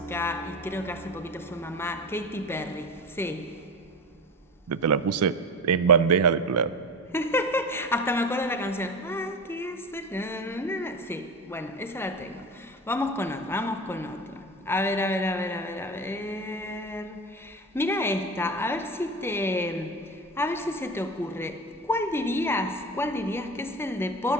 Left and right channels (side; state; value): both; normal; correlation 0.28